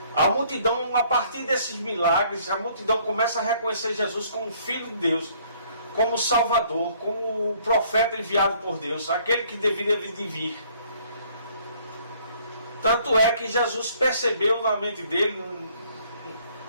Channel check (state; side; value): inverted; both; correlation -0.61